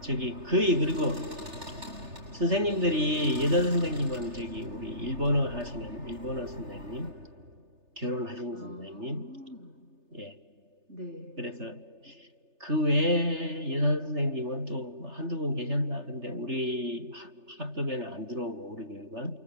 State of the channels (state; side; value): late; left; 3.3 ms